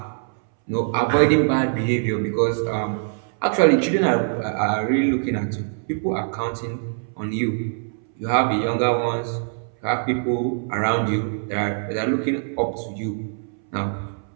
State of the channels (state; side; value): silent; left; 63 dB below the other